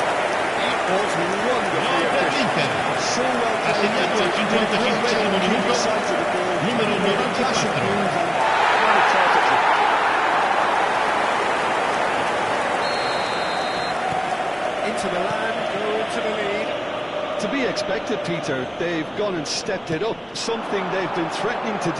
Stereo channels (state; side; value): identical; both; correlation 1.00